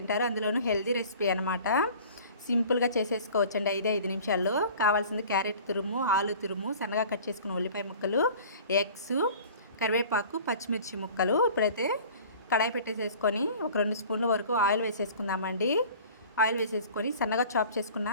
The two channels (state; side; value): inverted; both; correlation -0.45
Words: అందులోనూ హెల్తీ రెసిపీ అనమాట. సింపుల్‌గా చేసేసుకోవచ్చండి 5 నిమిషాల్లో. కావాల్సింది క్యారెట్ తురుము, ఆలు తురుము, సన్నగా కట్ చేసుకున్న ఉల్లిపాయ ముక్కలు, ఎగ్స్, కరివేపాకు, పచ్చిమిర్చి ముక్కలు. ఇప్పుడైతే కడాయి పెట్టేసేసుకొని ఒక 2 స్పూన్ల వరకు ఆయిల్ వేసేసుకుందామండి. ఆయిల్ వేసేసుకొని సన్నగా చాప్ చేసుకున్న